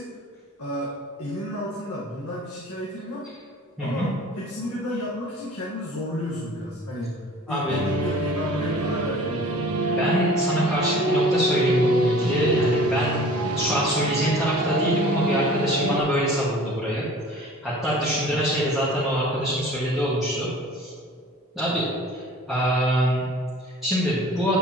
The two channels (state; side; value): normal; both; correlation 0.45